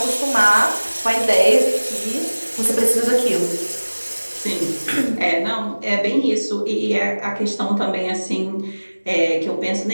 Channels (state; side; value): inverted; both; correlation -1.00